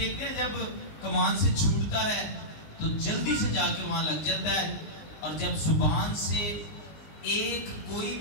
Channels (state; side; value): late; right; 19 ms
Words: हैं जब कमान से छूटता है तो जल्दी से जाके वहां लग जाता है, और जब जुबान से एक कोई